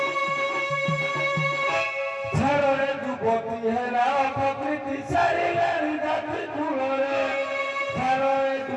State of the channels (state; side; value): identical; both; correlation 1.00